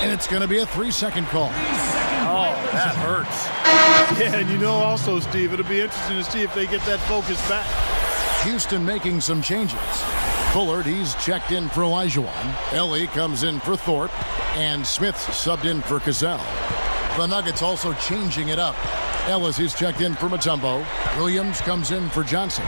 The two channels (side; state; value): both; inverted; correlation -1.00